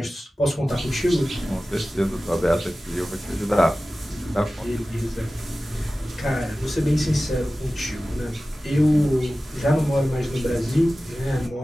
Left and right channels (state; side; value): normal; both; correlation 0.96